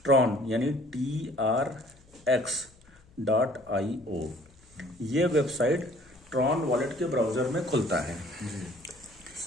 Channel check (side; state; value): left; noise; hum, 28 dB below the sound